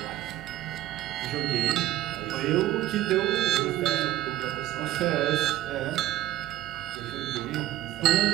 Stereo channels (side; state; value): left; quieter; 14.3 dB